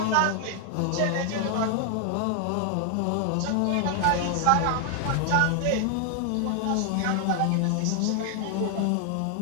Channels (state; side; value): different; both; correlation 0.00